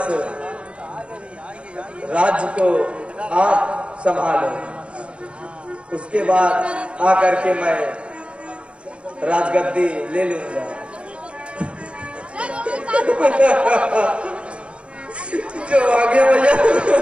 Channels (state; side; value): late; left; 0.059 ms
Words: राज्य को आप संभालो, उसके बाद आकर के मैं राजगद्दी ले लूंगा। जो आगे भैया,